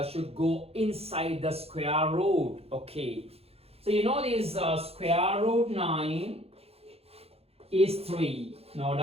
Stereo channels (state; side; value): late; left; 0.29 ms